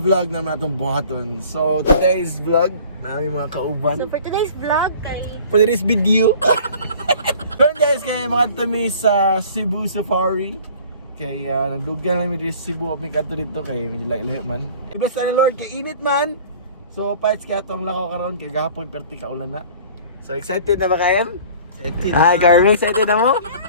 naman itong buhaton. So today's vlog, namin mga kauban. So for today's vlog, For today's video. So guys, kaya mga tami sa Cebu Safari. Kaya nagdugan lang dito sa Cebu. May kanto dito kay medyo layo man. Basta ni Lord, kay init man. So fights kaya itong lakaw karon kay gahapon perti kaulan na. So excited na ba kayo? Excited. Hi Carmen, excited na mo?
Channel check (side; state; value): both; inverted; correlation -0.48